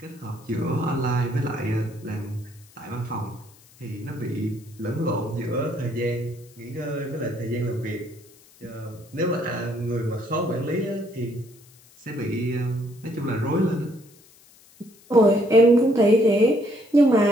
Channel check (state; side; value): noise; left; hiss, 27 dB below the sound